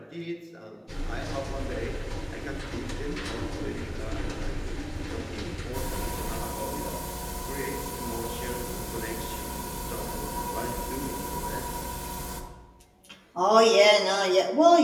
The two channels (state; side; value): identical; both; correlation 1.00